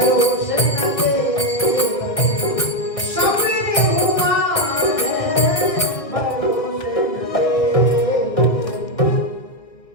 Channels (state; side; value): late; right; 1.6 ms